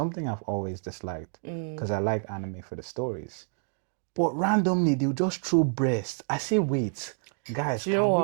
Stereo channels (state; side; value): silent; left; 56 dB below the other